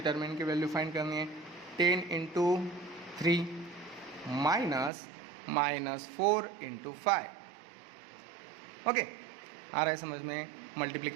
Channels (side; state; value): left; drops out; at 4.9 s